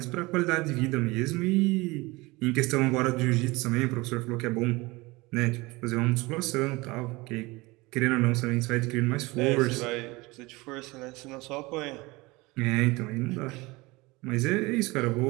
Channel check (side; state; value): left; quieter; 22.8 dB